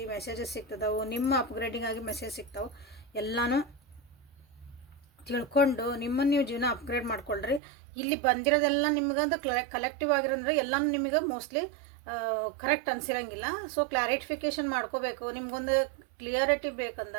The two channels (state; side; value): drops out; left; at 7.6 s